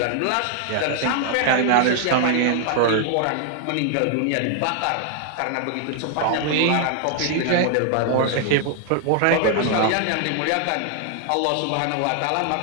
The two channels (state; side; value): different; both; correlation 0.00